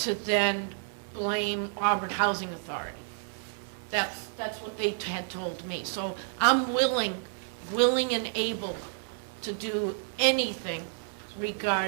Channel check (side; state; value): left; silent; digital silence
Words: then blame Auburn Housing Authority. That's what they had told me. So I'm willing and able to do anything